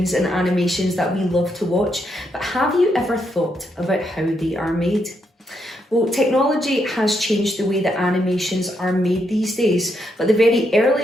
and animations that we love to watch, but have you ever thought about how they are made? Well, technology has changed the way that animations are made these days, but the very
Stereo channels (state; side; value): normal; both; correlation 0.79